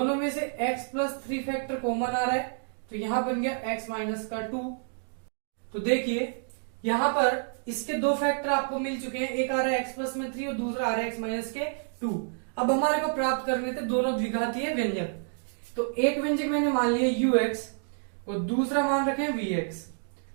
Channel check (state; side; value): silent; left; digital silence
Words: में से x प्लस 3 फैक्टर कॉमन आ रहा है तो यहां बन गया x माइनस का 2। तो देखिए यहां पर इसके 2 फैक्टर आपको मिल चुके हैं, एक आ रहा है x प्लस में 3 और दूसरा आ रहा है x माइनस के 2। अब हमारे को प्राप्त करने थे दोनों द्विघातीय व्यंजक। तो एक व्यंजक मैंने मान लिया ux और दूसरा मान रखे vx।